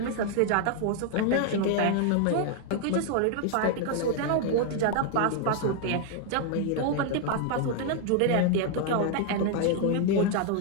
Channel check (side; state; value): both; different; correlation 0.00